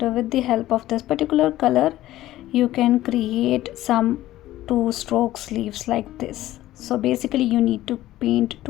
with the help of this particular color you can create some 2 strokes leaves like this. So basically you need to paint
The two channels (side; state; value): right; quieter; 14.9 dB